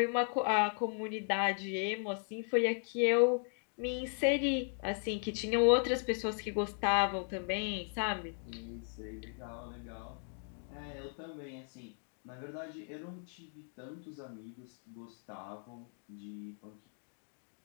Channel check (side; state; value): right; silent; 53 dB below the other